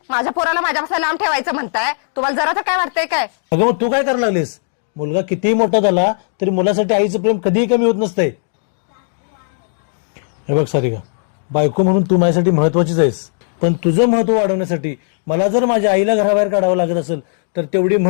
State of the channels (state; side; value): silent; right; digital silence